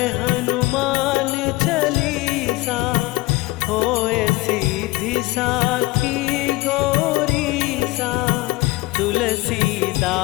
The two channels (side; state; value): right; quieter; 20.4 dB